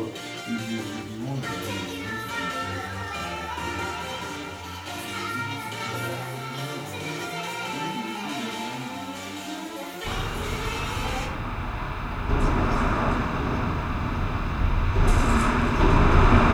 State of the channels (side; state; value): both; identical; correlation 1.00